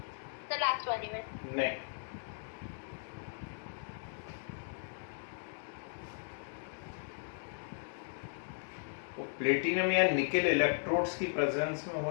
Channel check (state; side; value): silent; right; digital silence